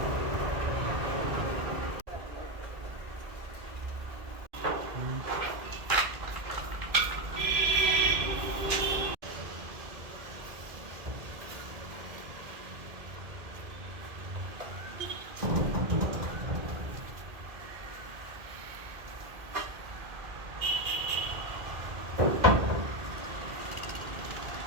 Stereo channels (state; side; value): late; left; 2.2 ms